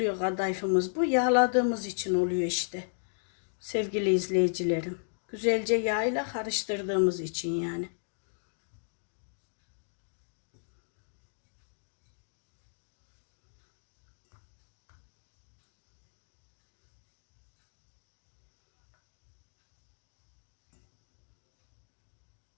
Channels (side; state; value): right; silent; digital silence